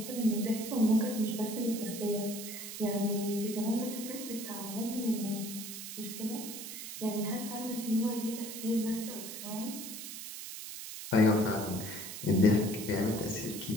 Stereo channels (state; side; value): noise; right; hiss, 9 dB below the sound